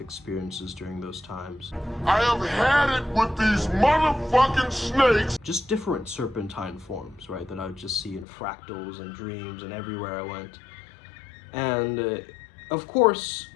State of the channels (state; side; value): drops out; right; at 8.2 s